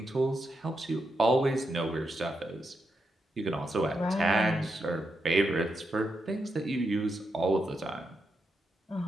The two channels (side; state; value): both; normal; correlation 0.84